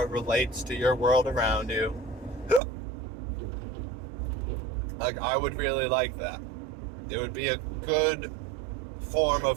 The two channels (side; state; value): left; drops out; at 2.6 s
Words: relates to your world around you. Like, I would really like that. It would be a good form